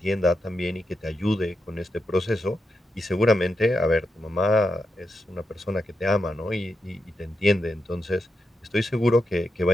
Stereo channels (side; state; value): both; normal; correlation 0.85